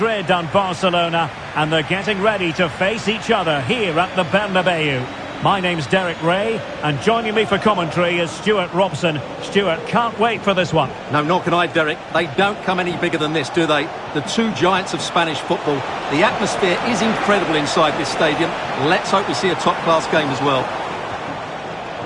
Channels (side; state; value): both; identical; correlation 1.00